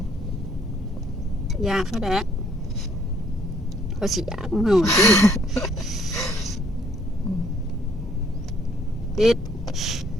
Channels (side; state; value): both; normal; correlation 0.64